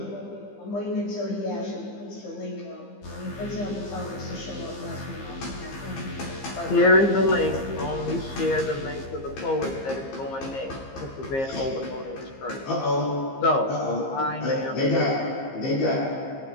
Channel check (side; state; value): right; late; 15 ms